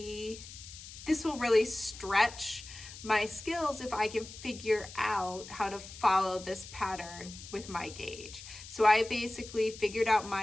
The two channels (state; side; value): noise; left; hiss, 14 dB below the sound